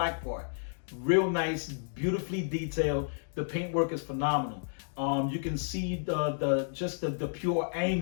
part. Real nice, beautifully detailed. The paintwork is phenomenal. You can see the pure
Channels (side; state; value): right; silent; digital silence